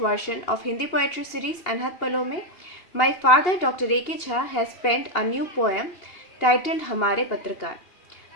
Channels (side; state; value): right; late; 2.8 ms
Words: of Hindi poetry series Anhat Palo mein, my father Dr. A.K. Jha has penned a new poem titled Hamare Patrakar.